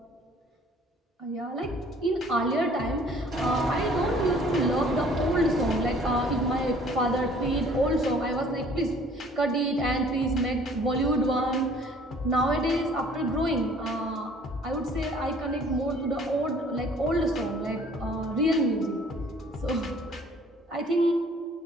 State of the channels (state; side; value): normal; both; correlation 0.54